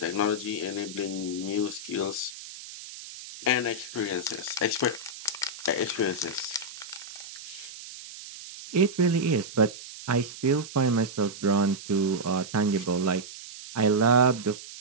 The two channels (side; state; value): right; noise; hiss, 14 dB below the sound